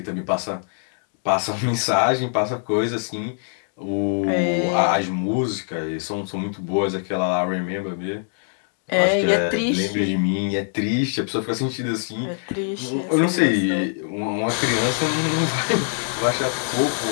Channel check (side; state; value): right; silent; digital silence